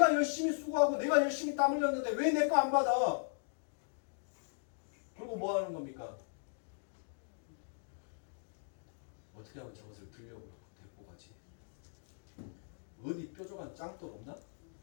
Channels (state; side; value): silent; right; digital silence